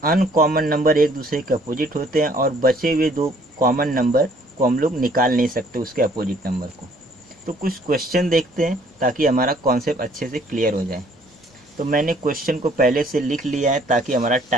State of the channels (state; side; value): normal; both; correlation 0.60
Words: अनकॉमन नंबर एक दूसरे के अपोजिट होते हैं और बचे हुए 2 कॉमन नंबर को हम लोग निकाल नहीं सकते उसके अपोजिट नंबर को। तो कुछ क्वेश्चन देखते हैं ताकि हमारा कॉन्सेप्ट अच्छे से क्लियर हो जाए। तो मैंने क्वेश्चन को पहले से लिख लिया है ताकि हमारा